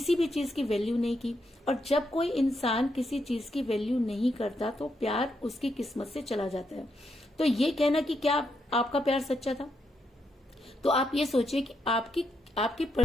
भी चीज की वैल्यू नहीं की। और जब कोई इंसान किसी चीज की वैल्यू नहीं करता तो प्यार उसकी किस्मत से चला जाता है। तो ये कहना कि क्या आपका प्यार सच्चा था, तो आप ये सोचिए कि आपकी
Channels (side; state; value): both; normal; correlation 0.80